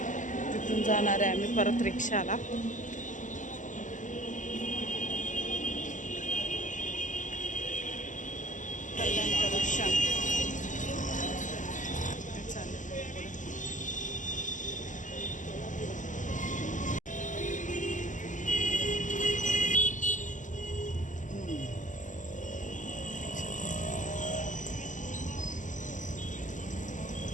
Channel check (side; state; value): right; late; 0.37 ms